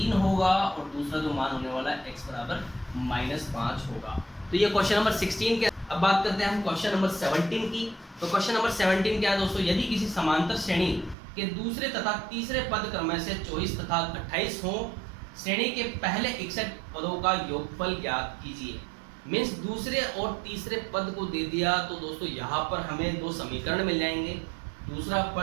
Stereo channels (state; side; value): drops out; left; at 11.2 s